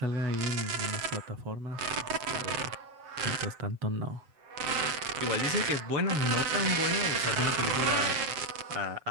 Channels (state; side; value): late; left; 7.4 ms